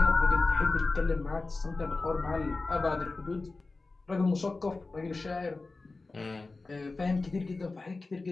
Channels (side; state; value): right; quieter; 3.6 dB